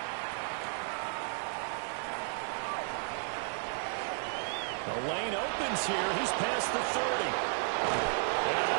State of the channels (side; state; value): left; silent; 55 dB below the other